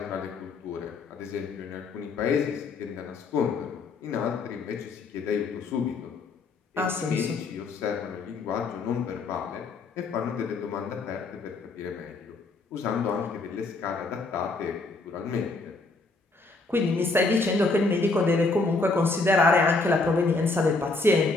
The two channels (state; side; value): quieter; right; 3.6 dB